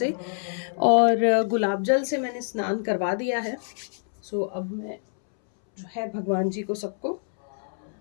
और गुलाब जल से मैंने स्नान करवा दिया है। सो अब मैं जो है भगवान जी को सबको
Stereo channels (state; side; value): silent; right; 61 dB below the other